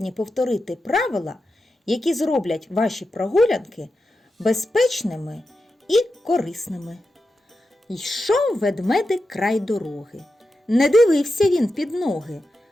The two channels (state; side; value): normal; both; correlation 0.90